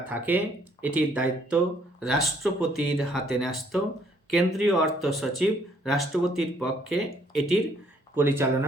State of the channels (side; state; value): both; normal; correlation 0.65